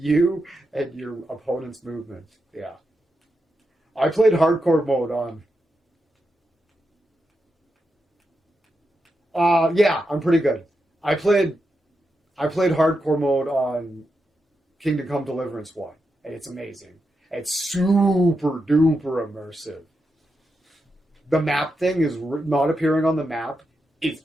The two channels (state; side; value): normal; both; correlation 0.86